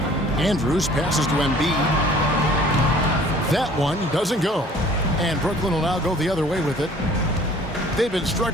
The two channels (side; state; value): both; normal; correlation 0.52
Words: Andrews passes to Embiid. That one doesn't go. And Brooklyn will now go the other way with it. They've been